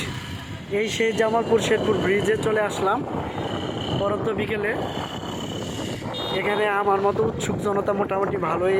এই সেই জামালপুর শেরপুর ব্রিজে চলে আসলাম পরন্ত বিকেলে। এখানে আমার মতো উৎসুক জনতা মোটামুটি ভালোই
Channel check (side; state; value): both; identical; correlation 1.00